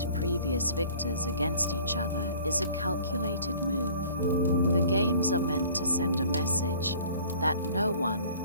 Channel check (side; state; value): both; inverted; correlation -0.49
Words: previous victors against each other is a calculated move. The games are meant to send a message that no one,